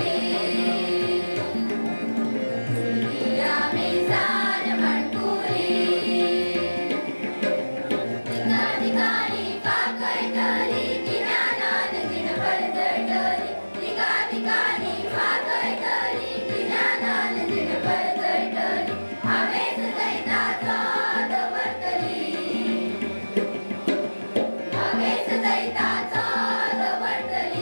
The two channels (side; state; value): both; inverted; correlation -1.00